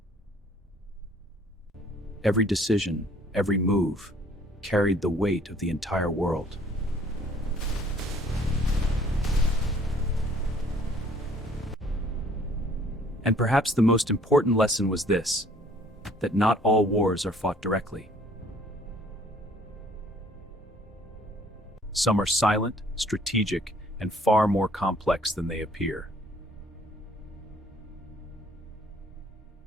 Every decision, every move, carried the weight of the entire world. And perhaps the most important lesson was this, that not all wars are fought directly. Some are silent, strategic, and far more complex than they appear.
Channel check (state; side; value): normal; both; correlation 0.58